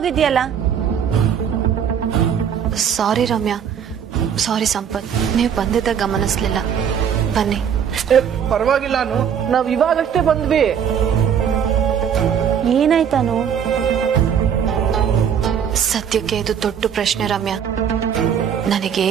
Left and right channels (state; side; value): quieter; left; 8.1 dB